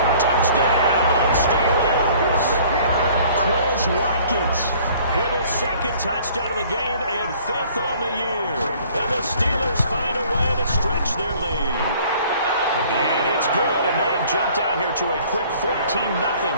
Touchdown, Steelers. Quez Watkins with his 2nd touchdown of the game and 5th on the year. And the Steelers find a way to stretch their lead. And it's good, and they have jumped out here to a quick 14-0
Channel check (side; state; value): both; inverted; correlation -0.54